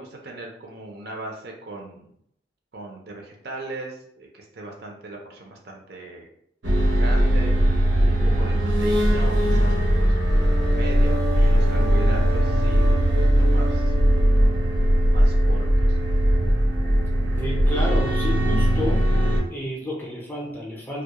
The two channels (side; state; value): both; normal; correlation 0.93